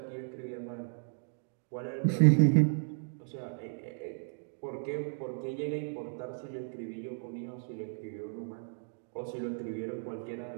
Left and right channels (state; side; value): silent; left; digital silence